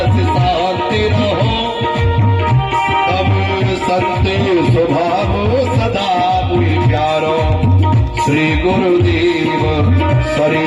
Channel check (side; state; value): both; identical; correlation 1.00